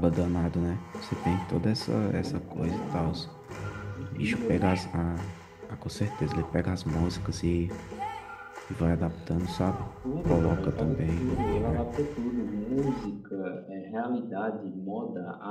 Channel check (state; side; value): identical; both; correlation 1.00